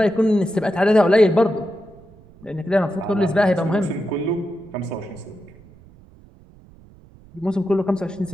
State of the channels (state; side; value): noise; right; rumble, 25 dB below the sound